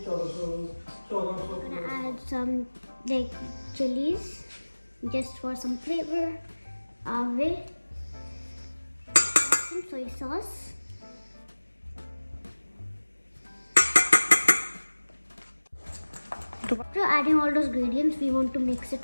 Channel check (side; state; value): both; inverted; correlation -1.00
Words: gonna add some like chillies just for some flavor. Some soy sauce. After adding all those ingredients, we want to mix